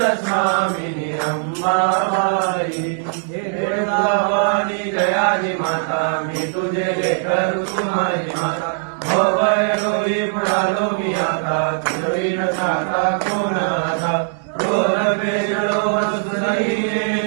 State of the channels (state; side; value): silent; left; digital silence